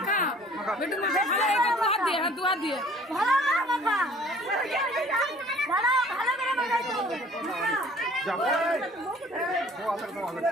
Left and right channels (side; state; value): both; normal; correlation 0.53